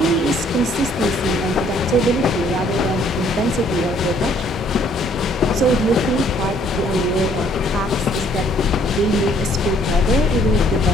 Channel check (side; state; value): both; normal; correlation 0.63